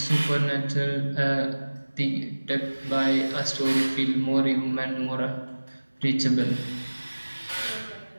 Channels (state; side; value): inverted; both; correlation -1.00